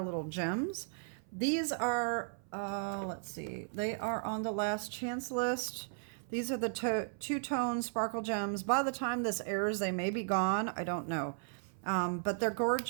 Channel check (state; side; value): silent; left; 54 dB below the other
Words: little gems. These are, let's see, they are on the last chance list. These are the two-tone sparkle gems. By the time this airs, they may be gone. I don't know. But they're